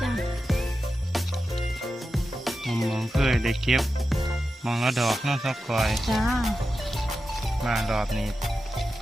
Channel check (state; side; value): normal; both; correlation 0.91